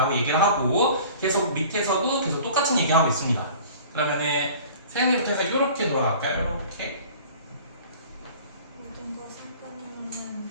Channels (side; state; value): both; inverted; correlation -0.45